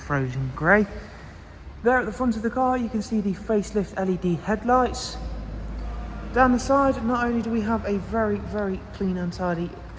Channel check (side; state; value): both; identical; correlation 1.00